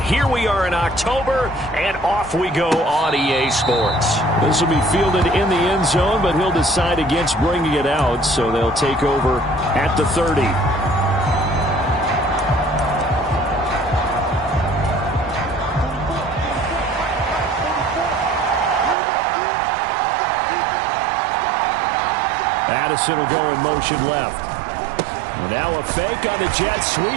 we are in October, and off we go on EA Sports. This will be fielded in the end zone, but he'll decide against bringing it out, so they'll take over at the 30. Addison will go in motion left. And now a fake on the jet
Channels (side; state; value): left; drops out; at 18.9 s